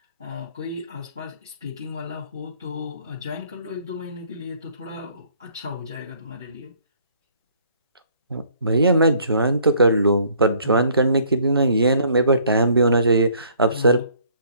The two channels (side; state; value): both; inverted; correlation -0.60